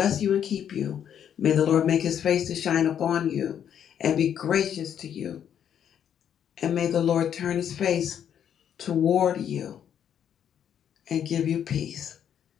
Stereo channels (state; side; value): quieter; right; 9.1 dB